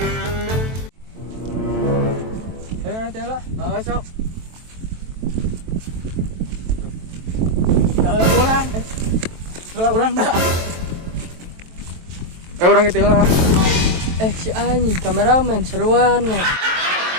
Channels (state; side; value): late; left; 23 ms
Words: Ayo nanti lah, masuk. Kalau orang dah. Orang itu lah. Si Ani, kameramen seruan.